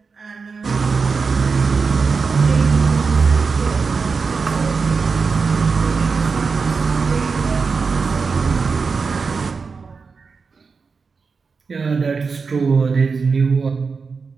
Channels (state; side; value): quieter; left; 4.9 dB